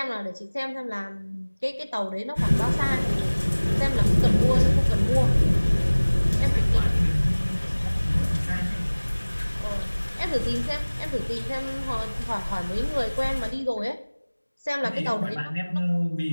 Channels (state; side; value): inverted; both; correlation -1.00